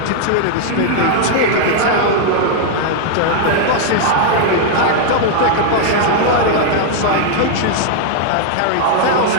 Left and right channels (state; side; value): different; both; correlation 0.00